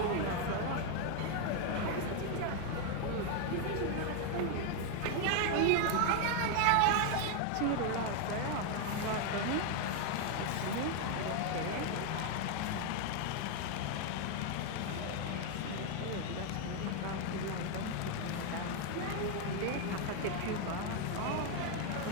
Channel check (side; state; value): both; different; correlation 0.01